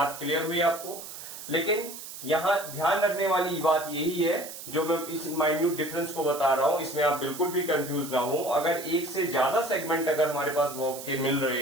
क्लियर हुई आपको? लेकिन यहां ध्यान रखने वाली बात यही है, जो मैं इस माइन्यूट डिफरेंस को बता रहा हूं, इसमें आप बिल्कुल भी कंफ्यूज ना हो। अगर एक से ज्यादा सेगमेंट अगर हमारे पास वर्ब के मिल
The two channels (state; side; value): noise; right; hiss, 11 dB below the sound